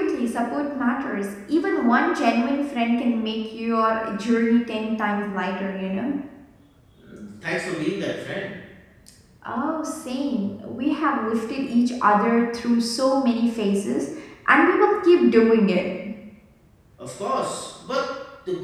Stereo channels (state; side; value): identical; both; correlation 1.00